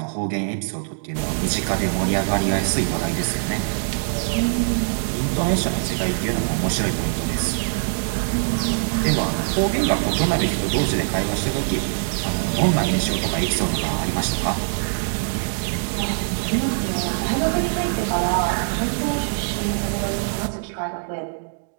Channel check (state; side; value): silent; left; digital silence